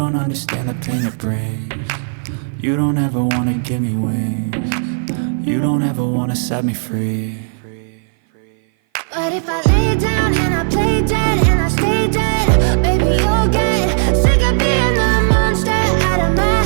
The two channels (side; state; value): left; silent; 57 dB below the other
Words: understand the pain it brings. You don't ever wanna give me wings. You don't ever wanna set me free. But if I lay down and I play dead and I stay dead, baby, you'll get sick of being the monster out of my